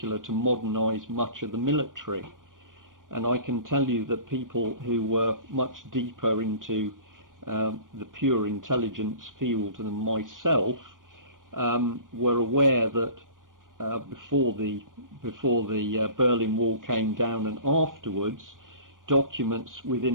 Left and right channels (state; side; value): late; left; 0.89 ms